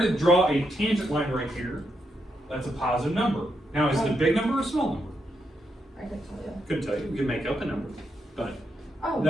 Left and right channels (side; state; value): both; normal; correlation 0.81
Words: draw a tangent line right here, that's a positive number. Now, is it a big number or a small number? I can tell you. Couldn't tell you, we can make up a number, but Oh.